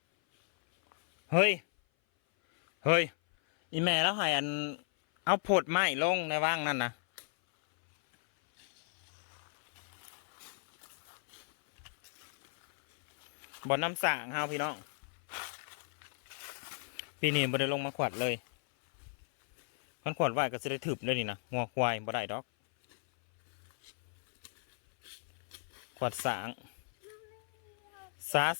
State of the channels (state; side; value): silent; right; 55 dB below the other